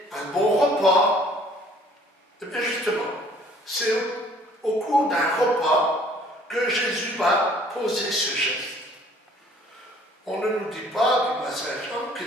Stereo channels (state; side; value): normal; both; correlation 0.56